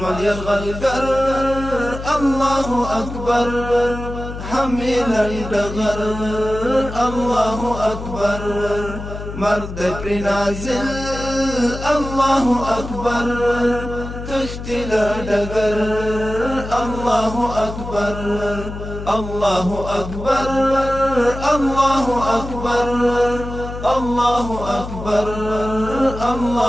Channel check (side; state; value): left; noise; hum, 9 dB below the sound